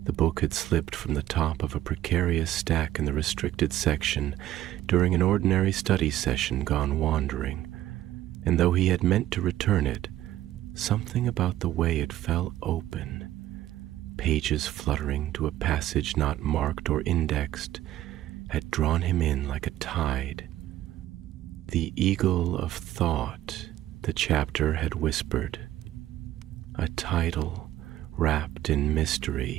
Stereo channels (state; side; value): quieter; left; 13.6 dB